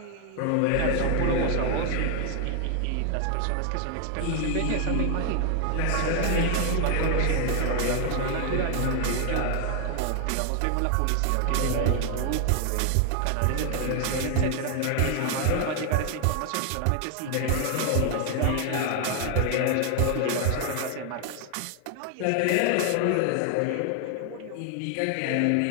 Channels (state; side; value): different; both; correlation 0.00